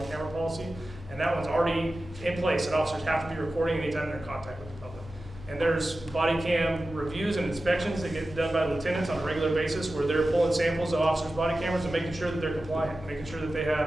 camera policy, and that one's already in place, that officers have to be recording anytime they're in contact with the public. And there's body cam reviews and inspections that get done by lieutenants on a regular basis, where they're pulling samples of officers' body cameras and making sure that they're compliant, making sure that they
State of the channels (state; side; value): normal; both; correlation 0.94